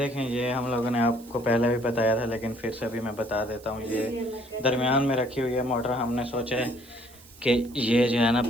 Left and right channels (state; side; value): noise; right; hiss, 23 dB below the sound